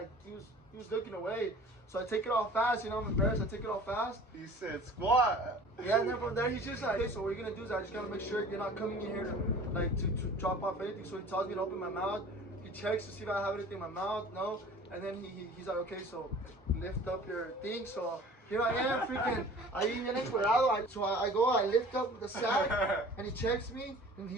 he was looking away. So I take it off fast, I'm embarrassed, I take it off fast. He said, squat. Yeah, and then from there, he's just like, okay, so what you're gonna do is I just gotta make sure you're not coming in here to drop off anything. So he tells me to open my mouth, he checks to see if I have anything in my mouth, no. And then he's like, okay, so lift up your thing. So here I am, freaking, ahí bien encuerado. So I go, I lift up the sack, and he checks me, and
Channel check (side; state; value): both; normal; correlation 0.45